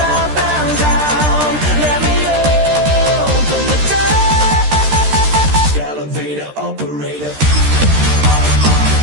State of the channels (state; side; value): late; left; 13 ms